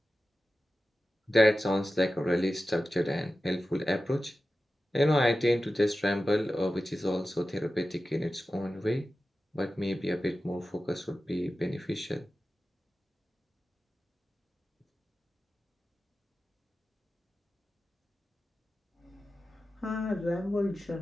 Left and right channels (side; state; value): both; normal; correlation 0.94